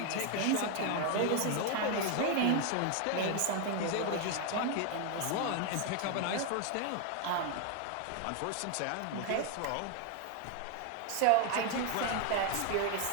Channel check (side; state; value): both; different; correlation 0.01